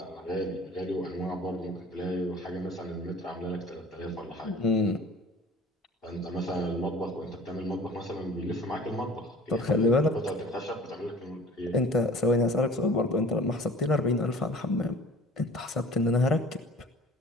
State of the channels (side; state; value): both; normal; correlation 0.45